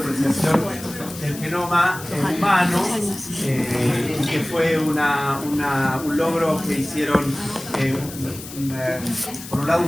del genoma humano, y que fue un logro que hicieron, por un lado,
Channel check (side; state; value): left; noise; hiss, 14 dB below the sound